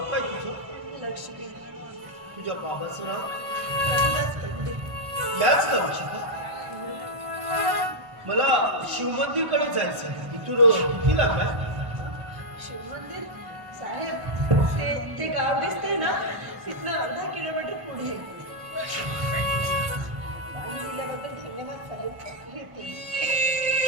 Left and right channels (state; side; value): late; left; 1.6 ms